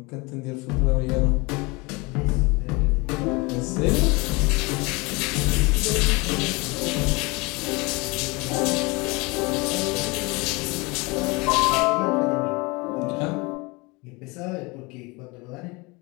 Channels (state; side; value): quieter; right; 26.0 dB